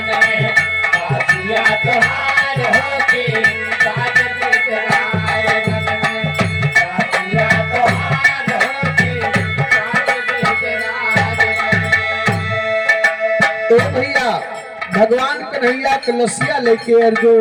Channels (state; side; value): identical; both; correlation 1.00